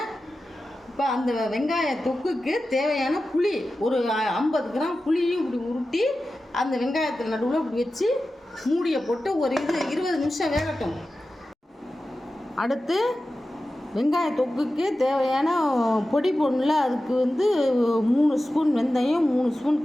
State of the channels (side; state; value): both; normal; correlation 0.94